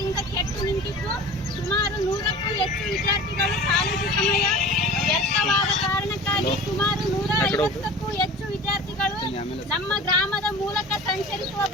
ಕೆಟ್ಟು ನಿಂತಿದ್ದು ಸುಮಾರು 100ಕ್ಕೂ ಹೆಚ್ಚು ವಿದ್ಯಾರ್ಥಿಗಳು ಕಾಲೇಜು ಸಮಯ ವ್ಯರ್ಥವಾದ ಕಾರಣಕ್ಕಾಗಿ ಸುಮಾರು 150ಕ್ಕೂ ಹೆಚ್ಚು ವಿದ್ಯಾರ್ಥಿಗಳು ನಮ್ಮ ಗ್ರಾಮದ ಮೂಲಕ ಸಂಚರಿಸುವ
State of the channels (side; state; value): both; normal; correlation 0.39